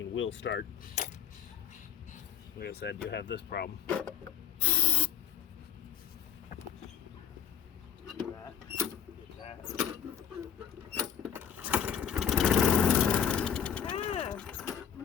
will start. Like I said, you have this problem. Get that.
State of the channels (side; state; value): right; quieter; 8.6 dB